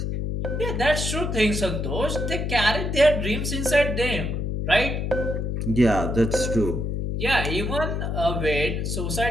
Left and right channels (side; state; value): left; noise; hum, 2 dB below the sound